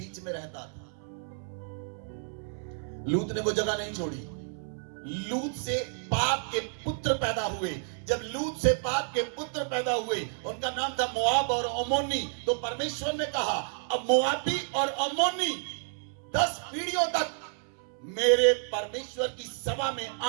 में रहता था। लूत ने वो जगह नहीं छोड़ी। लूत से पाप के पुत्र पैदा हुए। जब लूत से पाप के पुत्र पैदा हुए, उनका नाम था मोआब और अमोनी। तो परमेश्वर ने कहा अब मोआबी और अमोनी 10 पीढ़ियों तक मेरे परमेश्वर की सभा में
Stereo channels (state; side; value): silent; left; 58 dB below the other